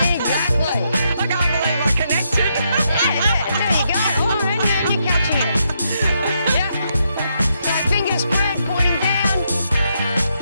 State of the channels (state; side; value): inverted; both; correlation -0.79